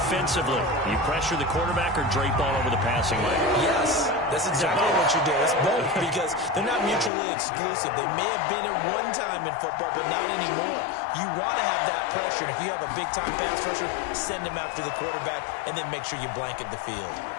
you pressure the quarterback or drape all over the passing lane? Yes, that's exactly what you do. It's both because they're not mutually exclusive. They may have been at one time in football, but not anymore. You want to have that pressure. And if you have a big-time pass rusher, send him after the quarterback and then make sure you blanket the field.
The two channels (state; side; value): drops out; right; at 7.1 s